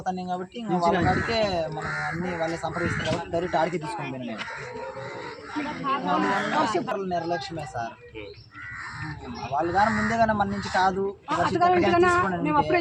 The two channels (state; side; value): identical; both; correlation 1.00